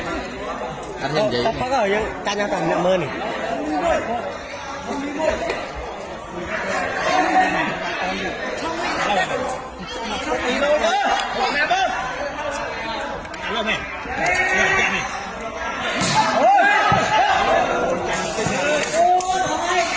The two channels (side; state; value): both; identical; correlation 1.00